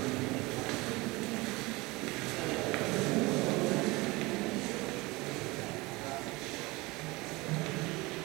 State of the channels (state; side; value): quieter; left; 23.0 dB